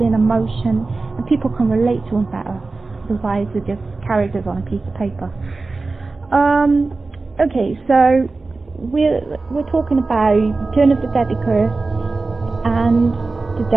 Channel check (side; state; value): left; quieter; 3.7 dB